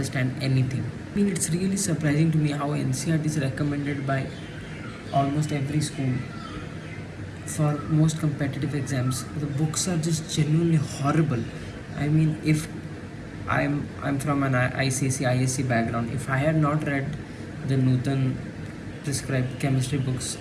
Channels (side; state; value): both; identical; correlation 1.00